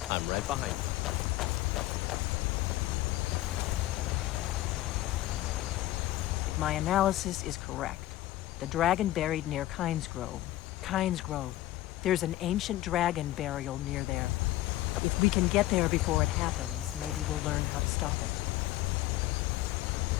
I'm right behind you. If my analysis is correct, the dragon buried near Kynes Grove. Kynes Grove. There's an ancient dragon burial near there. If we can get there before it happens, maybe we'll learn how to stop it.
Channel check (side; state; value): right; quieter; 15.7 dB